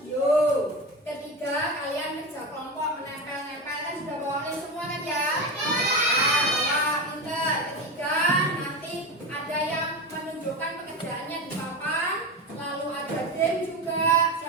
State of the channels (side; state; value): both; normal; correlation 0.21